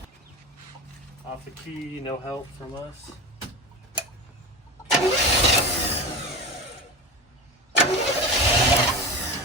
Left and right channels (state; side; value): normal; both; correlation 0.25